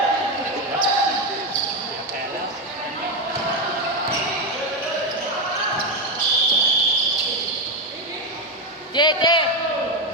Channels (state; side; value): normal; both; correlation 0.10